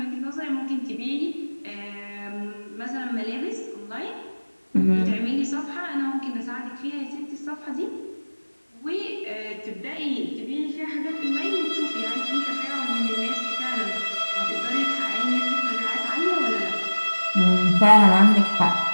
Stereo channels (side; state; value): both; inverted; correlation -1.00